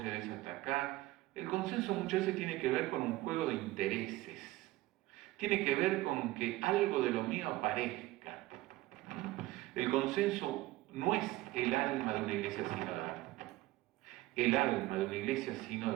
cedés hasta acá. El consenso muchas veces tiene que ver con un juego de intereses. Tiene que ver con que algo de lo mío aparezca. El consenso no es el alma de una iglesia sinodal. El alma de una iglesia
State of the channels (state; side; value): quieter; left; 17.9 dB